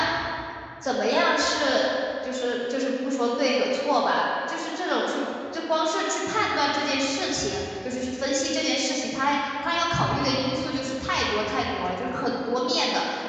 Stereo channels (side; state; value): both; identical; correlation 1.00